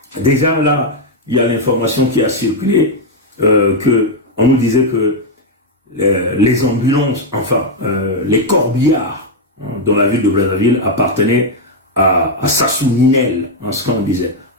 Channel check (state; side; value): normal; both; correlation 0.00